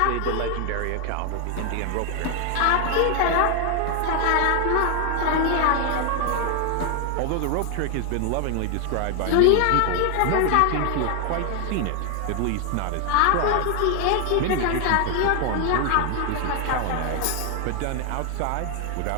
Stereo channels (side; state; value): both; different; correlation 0.00